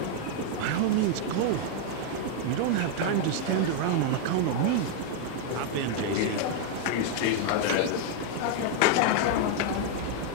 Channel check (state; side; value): different; both; correlation 0.00